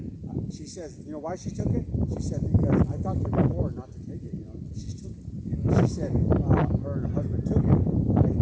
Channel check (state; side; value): identical; both; correlation 1.00